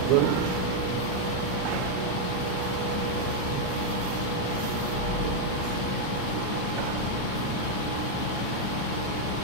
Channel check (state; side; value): different; both; correlation 0.00